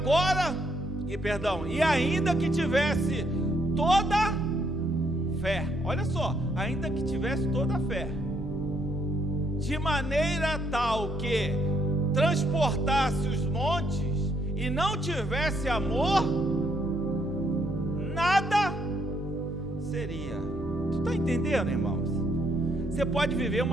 e ainda que tivesse toda fé, olha só, ainda que tivesse toda a fé, de maneira tal que transportasse os montes e não tivesse amor, nada seria. Tu está entendendo, irmãos? Você pode viver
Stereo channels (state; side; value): normal; both; correlation 0.72